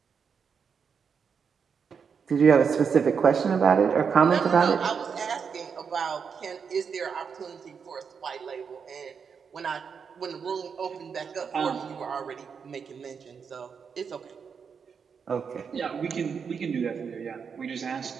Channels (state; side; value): quieter; left; 6.3 dB